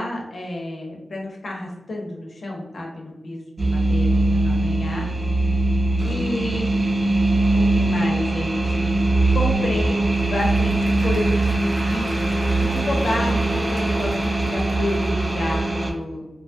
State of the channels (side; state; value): both; normal; correlation 0.91